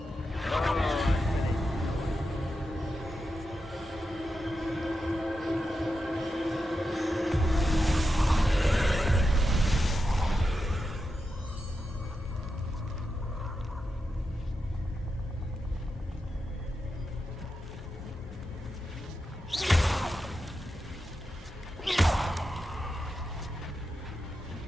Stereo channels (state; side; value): normal; both; correlation 0.88